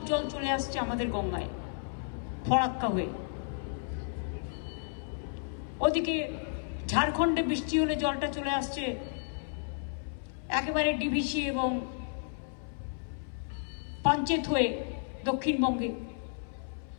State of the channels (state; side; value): silent; right; 56 dB below the other